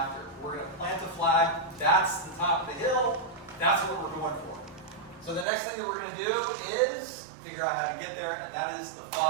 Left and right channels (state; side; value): drops out; left; at 5.5 s